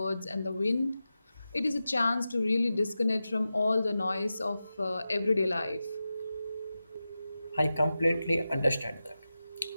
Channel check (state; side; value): inverted; both; correlation -0.93